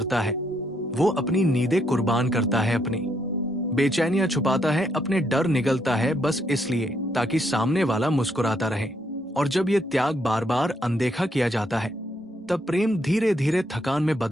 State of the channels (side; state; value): both; normal; correlation 0.74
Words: है वो अपनी नींदें कुर्बान करता है, अपनी बेचैनियां छुपाता है, अपने डर निगलता है बस इसलिए ताकि सामने वाला मुस्कुराता रहे। और जब ये त्याग बार बार अनदेखा किया जाता है तब प्रेम धीरे धीरे थकान में